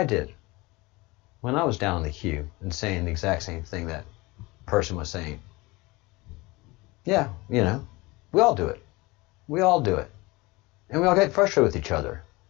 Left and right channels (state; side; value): quieter; right; 23.0 dB